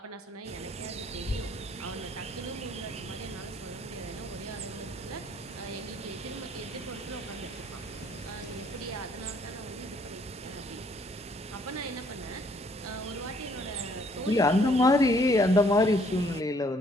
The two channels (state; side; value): normal; both; correlation 0.63